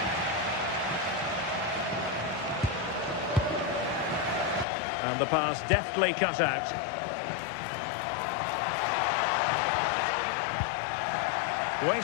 And the pass deftly cut out.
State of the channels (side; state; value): right; drops out; at 4.7 s